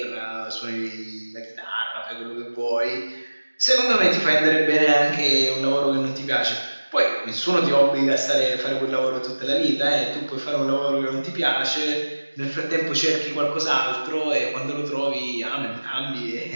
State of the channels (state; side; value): inverted; both; correlation -1.00